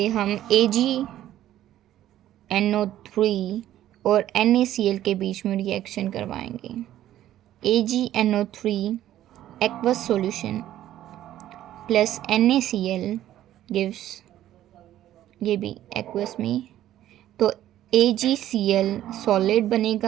हम AgNO3 और NaCl के बीच में रिएक्शन करवाएंगे. AgNO3 aqueous solution plus NaCl gives, ये भी एक्वस में, तो AgCl सॉलिड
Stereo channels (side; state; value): left; quieter; 12.8 dB